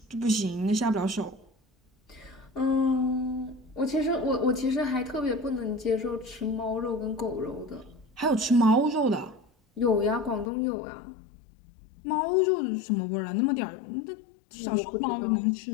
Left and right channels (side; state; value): right; drops out; at 10.5 s